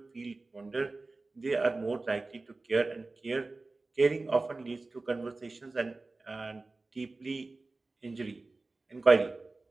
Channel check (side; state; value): left; quieter; 3.4 dB